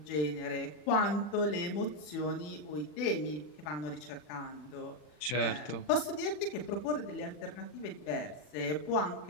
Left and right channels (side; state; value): right; late; 40 ms